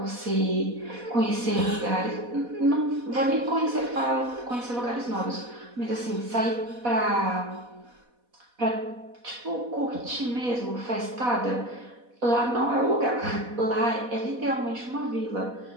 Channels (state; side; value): late; left; 4.1 ms